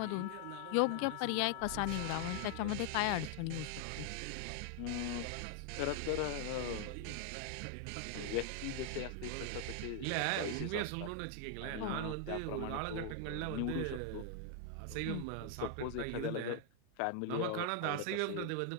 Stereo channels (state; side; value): different; both; correlation 0.00